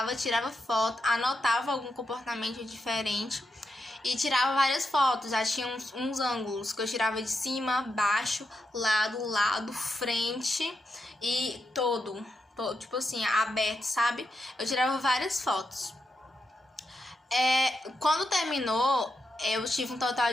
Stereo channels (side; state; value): both; normal; correlation 0.85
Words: tirava foto, anotava algum comportamento diferente e tirava várias fotos. Já tinha uns ângulos que eu tirava de cima, baixo, lado, frente e todo, tipo assim, aberto, sabe? Eu tirava várias fotos. Quando terminou, eu tive um total